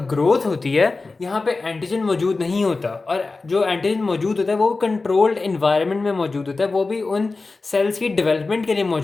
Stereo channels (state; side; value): quieter; right; 3.7 dB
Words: ग्रोथ होती है। यहाँ पे एंटीजन मौजूद नहीं होता, और जो एंटीजन मौजूद होता है वो कंट्रोल्ड इन्वायरमेंट में मौजूद होता है, वो भी उन सेल्स की डेवलपमेंट के लिए